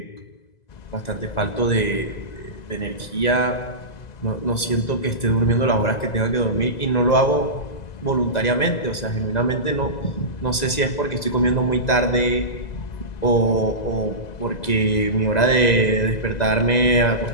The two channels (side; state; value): right; late; 2.0 ms